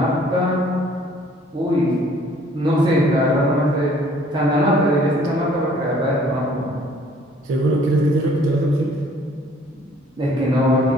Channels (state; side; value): normal; both; correlation 0.58